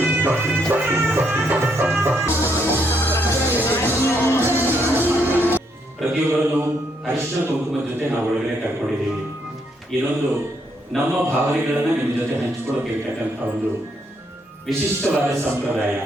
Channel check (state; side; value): normal; both; correlation 0.74